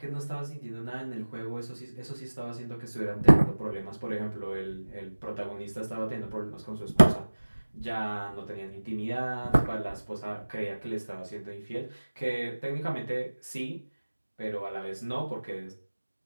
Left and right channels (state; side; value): inverted; both; correlation -1.00